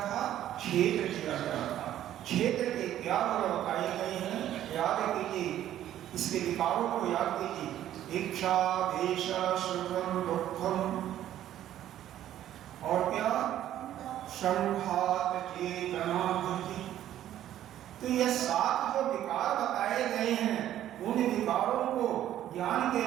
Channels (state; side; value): quieter; left; 12.1 dB